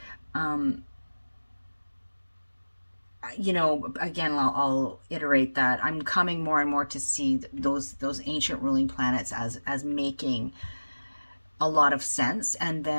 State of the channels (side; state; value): both; inverted; correlation -1.00